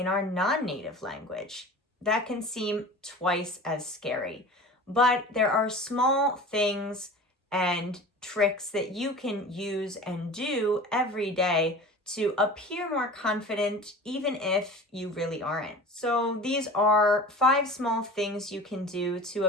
our non-native language? That can seem twice as scary. But there are small things and tricks that you can use and do every day to appear more confident, even if you really aren't. So these are 5 small things you can do to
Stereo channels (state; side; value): normal; both; correlation 0.38